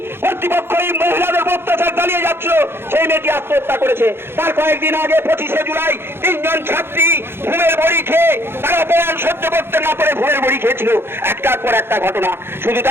কর্তৃপক্ষ এই মহিলাদের অত্যাচার চালিয়ে যাচ্ছিল, সেই মেয়েটি আত্মহত্যা করেছে। তার কয়েকদিন আগে 25শে জুলাই 3 জন ছাত্রী ঘুমের বড়ি খেয়ে তারা অপমান সহ্য করতে না পারে ঘুমের বড়ি খেয়েছিল। একটার পর একটা ঘটনা। শুধু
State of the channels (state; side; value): late; left; 0.11 ms